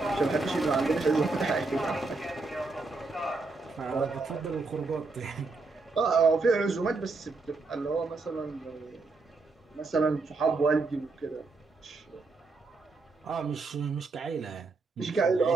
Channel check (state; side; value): quieter; left; 3.8 dB